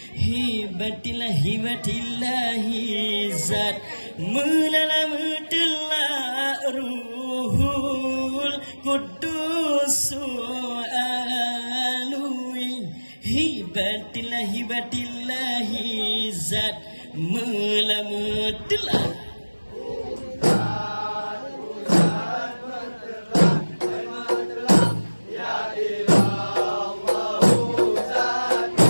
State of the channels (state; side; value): inverted; both; correlation -1.00